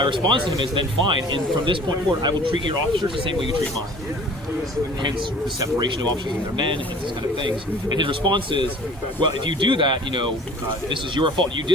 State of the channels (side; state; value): both; normal; correlation 0.48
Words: response to him is, then fine, and from this point forward, I will treat your officers the same way you treat mine. Hence the separation of officers and their men, and these kind of things. And his response is, well, if you do that, this is your fault. You